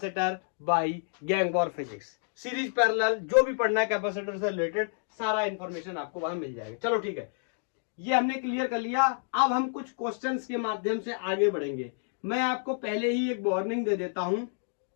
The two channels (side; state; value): right; silent; digital silence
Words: बाई गैंगबॉर फिजिक्स, सीरीज पैरेलल, जो भी पढ़ना है कैपेसिटर से रिलेटेड सारा इंफॉर्मेशन आपको वहां मिल जाएगा। चलो ठीक है, ये हमने क्लियर कर लिया। अब हम कुछ क्वेश्चंस के माध्यम से आगे बढ़ेंगे। मैं आपको पहले ही एक वार्निंग दे देता हूं,